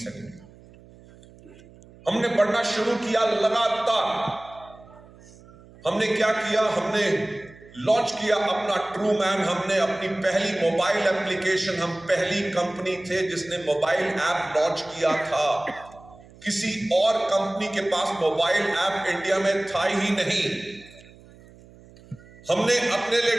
हमने पढ़ना शुरू किया लगातार। हमने क्या किया, हमने लॉन्च किया अपना ट्रू मैन, हमने अपनी पहली मोबाइल एप्लीकेशन, हम पहली कंपनी थे जिसने मोबाइल ऐप लॉन्च किया था। किसी और कंपनी के पास मोबाइल ऐप इंडिया में था ही नहीं। हमने अपने लिए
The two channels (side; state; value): right; noise; hum, 23 dB below the sound